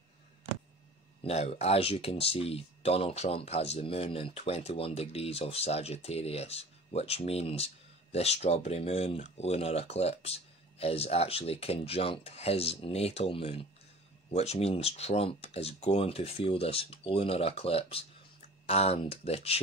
Now, as you can see, Donald Trump has the moon in 21 degrees of Sagittarius, which means this strawberry moon lunar eclipse is actually conjunct his natal moon, which means Trump is going to feel this lunar eclipse and the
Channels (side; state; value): both; normal; correlation 0.43